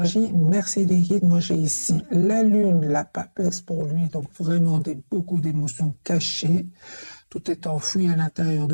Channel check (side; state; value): both; inverted; correlation -1.00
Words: Merci les guides. Moi, j'ai ici la lune, la papesse pour lui. Donc vraiment beaucoup d'émotions cachées. Tout est enfoui à l'intérieur